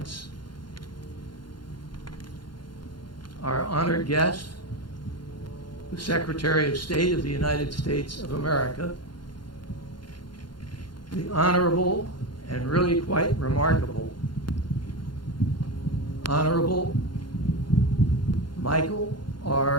our honored guest, the Secretary of State of the United States of America, the Honorable and really quite remarkable Honorable Michael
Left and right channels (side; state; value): right; late; 0.71 ms